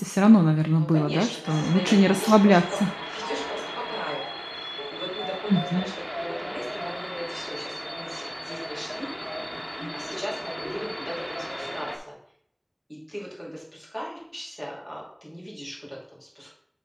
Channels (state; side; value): identical; both; correlation 1.00